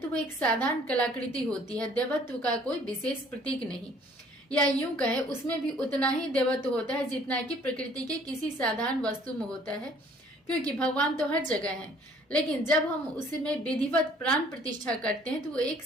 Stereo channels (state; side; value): normal; both; correlation 0.57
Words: वो एक साधारण कलाकृति होती है, देवत्व का कोई विशेष प्रतीक नहीं। या यूं कहे उसमें भी उतना ही देवत्व होता है जितना कि प्रकृति के किसी साधारण वस्तु में होता है, क्योंकि भगवान तो हर जगह हैं। लेकिन जब हम उसमें विधिवत प्राण प्रतिष्ठा करते हैं तो वो एक